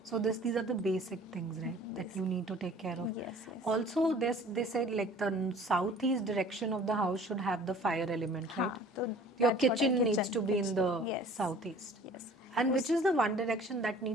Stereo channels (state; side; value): normal; both; correlation 0.49